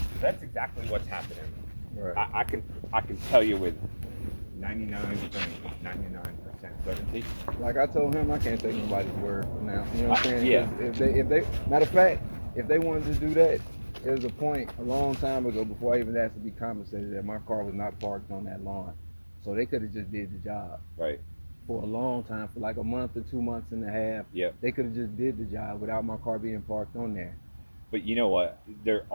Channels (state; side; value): inverted; both; correlation -1.00